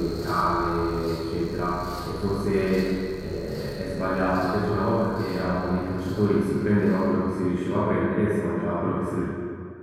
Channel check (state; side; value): identical; both; correlation 1.00